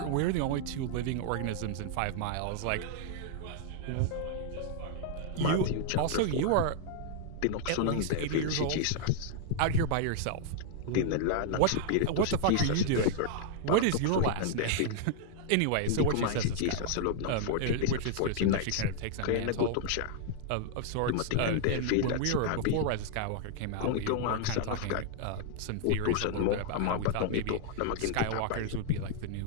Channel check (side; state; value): both; different; correlation -0.01